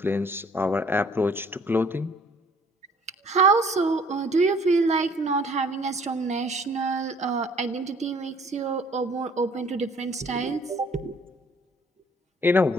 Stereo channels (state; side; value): normal; both; correlation 0.57